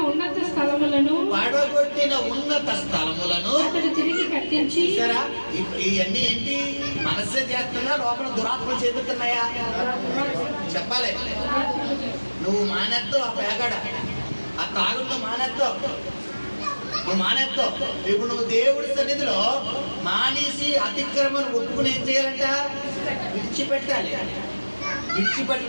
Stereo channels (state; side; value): inverted; both; correlation -1.00